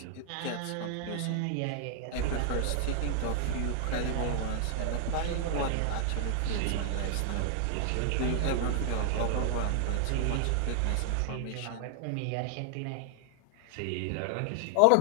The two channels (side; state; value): both; different; correlation 0.00